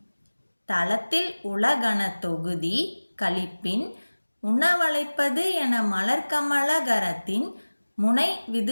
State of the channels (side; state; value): both; inverted; correlation -1.00